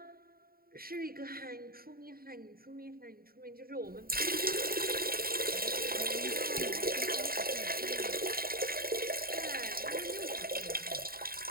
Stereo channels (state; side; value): late; left; 0.43 ms